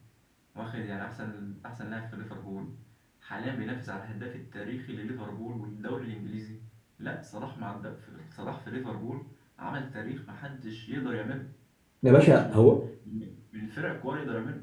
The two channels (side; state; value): both; identical; correlation 1.00